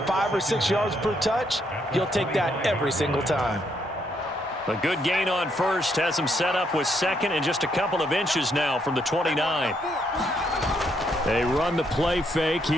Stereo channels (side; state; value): both; normal; correlation 0.74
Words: 5 or 6 yards per touch, you'll take that every single time. A good gain on first has him set up with second and just a couple of inches now from the 29. They run the play fake.